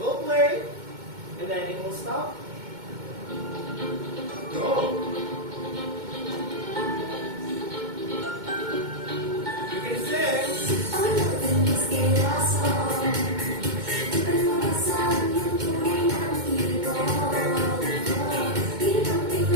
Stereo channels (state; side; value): late; left; 2.2 ms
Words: play, and then it will stop. Go! You can sing.